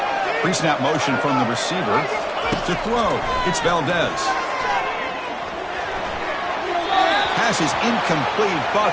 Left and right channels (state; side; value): identical; both; correlation 1.00